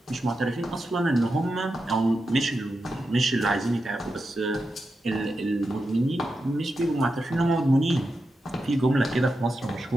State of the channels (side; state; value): both; normal; correlation 0.89